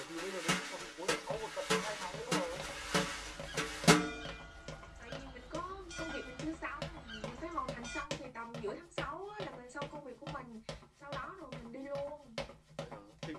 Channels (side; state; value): both; identical; correlation 1.00